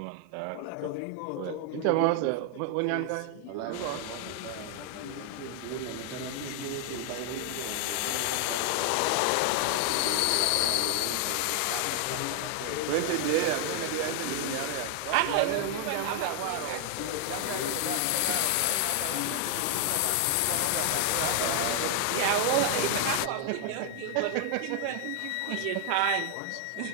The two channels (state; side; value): different; both; correlation 0.00